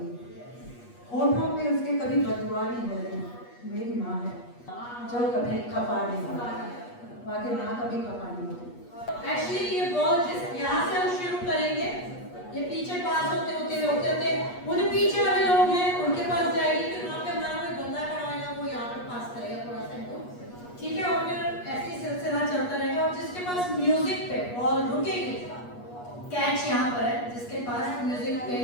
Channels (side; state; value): right; late; 8.3 ms